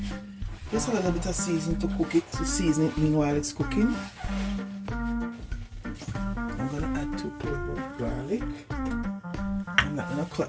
Just a little bit of seasoning to cook it, to season it meanwhile it's cooking. I'm gonna add 2 cloves of garlic. I'm not gonna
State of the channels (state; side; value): identical; both; correlation 1.00